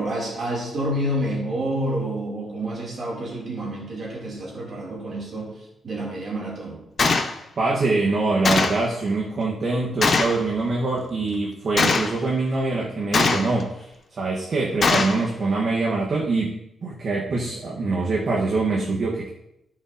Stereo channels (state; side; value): normal; both; correlation 0.78